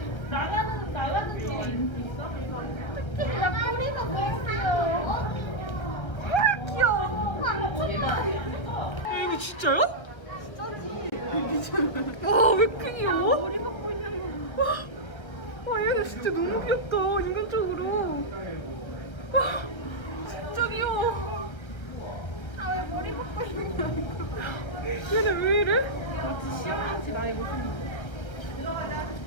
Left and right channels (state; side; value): late; right; 1.3 ms